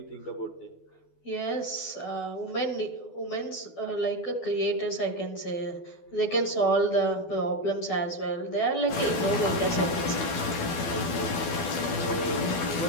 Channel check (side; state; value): right; late; 12 ms